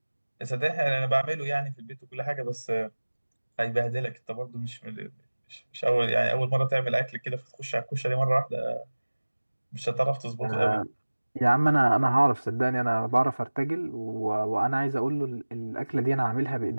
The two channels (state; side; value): inverted; both; correlation -1.00